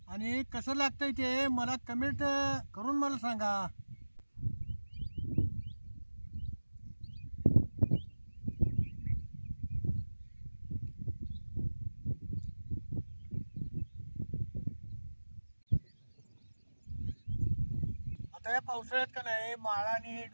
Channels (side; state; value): both; inverted; correlation -1.00